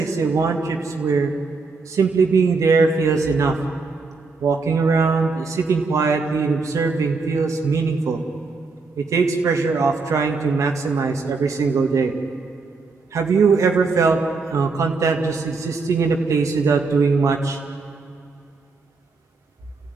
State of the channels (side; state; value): left; quieter; 4.2 dB